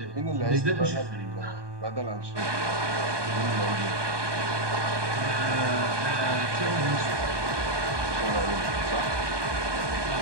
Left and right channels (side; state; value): left; late; 1.2 ms